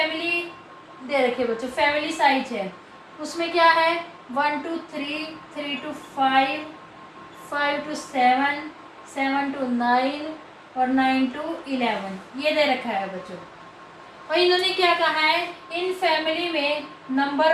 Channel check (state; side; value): identical; both; correlation 1.00